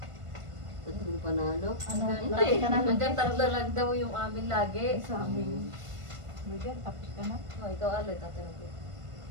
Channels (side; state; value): left; late; 1.5 ms